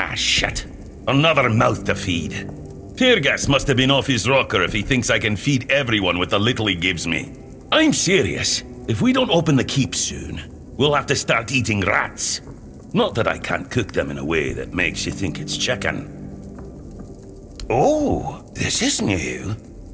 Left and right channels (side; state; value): both; identical; correlation 1.00